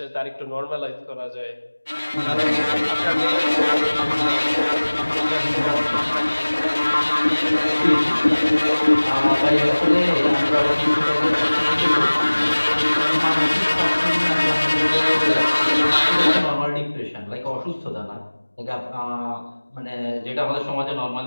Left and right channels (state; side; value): inverted; both; correlation -1.00